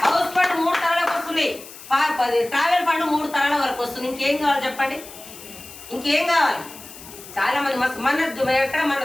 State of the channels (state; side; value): noise; left; hiss, 16 dB below the sound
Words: వస్తుంది, ట్రావెల్ ఫండ్ 3 తరాల వరకు వస్తుంది. ఇంకేం కావాలి చెప్పండి, ఇంకేం కావాలి? చాలా మంది మన